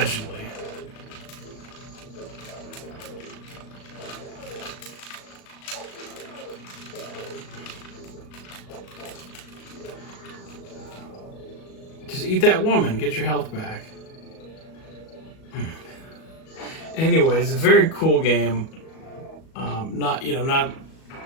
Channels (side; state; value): right; late; 37 ms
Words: Just eat that woman, get your health back. Anyways, a very cool game. Not, you know, not